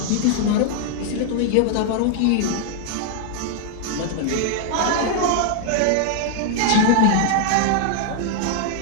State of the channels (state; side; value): different; both; correlation 0.00